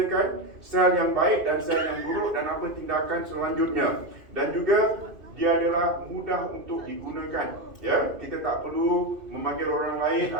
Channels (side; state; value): left; late; 2.5 ms